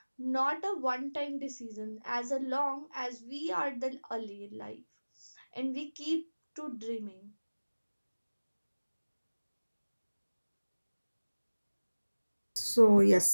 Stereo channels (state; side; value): inverted; both; correlation -1.00